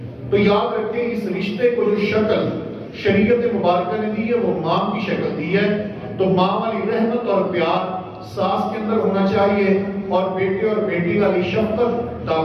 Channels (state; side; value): identical; both; correlation 1.00